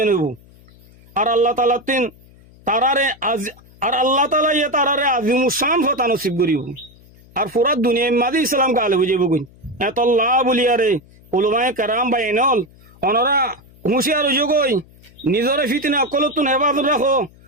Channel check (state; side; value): noise; left; hum, 26 dB below the sound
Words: হইব আর আল্লাহ তাআলা তারারে আজিমুস শান ফতা নসিব করিব আর পুরা দুনিয়া মাদি ইসলাম কালে বুঝিব কই এত আল্লাহ বলিয়ারে উলামায়ে কেরাম বাইনল অনরা হুঁশিয়ার হইজ কই নিজরে ফিতনা কলতুন হেফাজত রাখো